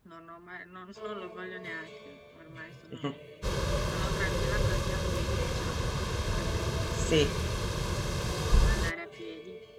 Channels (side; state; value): both; identical; correlation 1.00